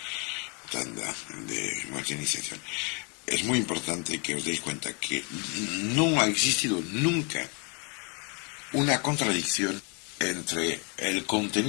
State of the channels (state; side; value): quieter; right; 34.2 dB